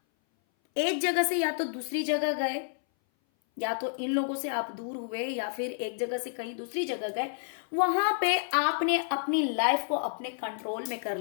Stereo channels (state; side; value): silent; right; 57 dB below the other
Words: एक जगह से या तो दूसरी जगह गए, या तो इन लोगों से आप दूर हुए, या फिर एक जगह से कहीं दूसरी जगह गए, वहां पे आपने अपनी लाइफ को अपने कंट्रोल में कर